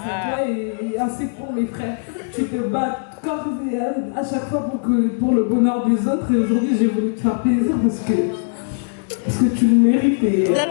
à toi et ainsi pour mes frères. Tu te bats corps et âme à chaque fois pour le bonheur des autres. Et aujourd'hui, j'ai voulu te faire plaisir parce que tu le mérites. Et,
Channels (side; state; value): right; silent; digital silence